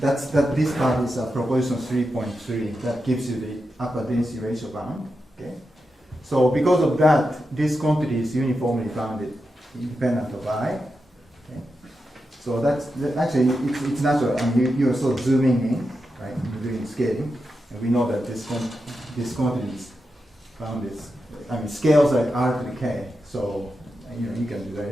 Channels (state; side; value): normal; both; correlation 0.88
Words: part is proposition 3.3. That gives you the upper density ratio bound. Okay. So because of that, this quantity is uniformly bounded, independent of I. Okay. So that's actually it's natural. I mean, you're sort of zooming in, right? You're doing scaling, and we know that this quantity is bounded. I mean, scales like R to the K. So you know you can do